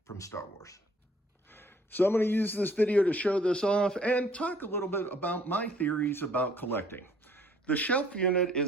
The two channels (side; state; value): both; normal; correlation 0.60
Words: from Star Wars. So I'm going to use this video to show this off and talk a little bit about my theories about collecting. The shelf unit